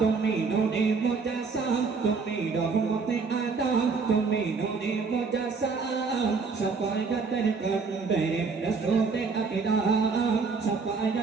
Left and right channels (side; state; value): left; quieter; 4.8 dB